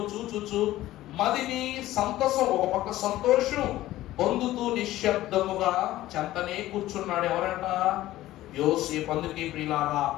చూచుచు మదిని సంతసం, ఒక పక్క సంతోషం పొందుతూ నిశ్శబ్దముగా చెంతనే కూర్చున్నాడు. ఎవరంట? యోసేపు. అందుకే ప్రియులారా,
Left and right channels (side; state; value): right; quieter; 15.4 dB